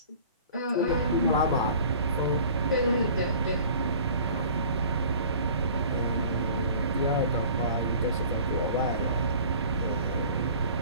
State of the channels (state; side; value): inverted; both; correlation -0.46